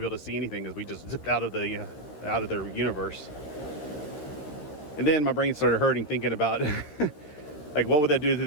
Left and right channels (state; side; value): late; right; 13 ms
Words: able to see anything because we just zipped out of their universe. And then my brain started hurting thinking about like, what would that do to